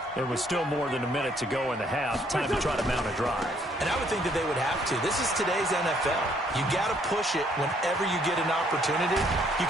There was still more than a minute to go in the half. Time to try to mount a drive. And I would think that they would have to. This is today's NFL. You got to push it whenever you get an opportunity. You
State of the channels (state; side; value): normal; both; correlation 0.66